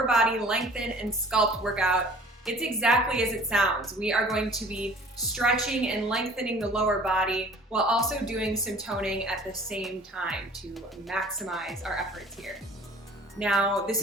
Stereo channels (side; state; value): both; normal; correlation 0.49